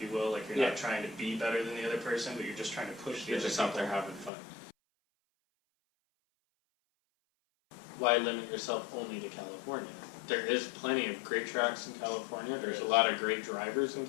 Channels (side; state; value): right; drops out; at 4.3 s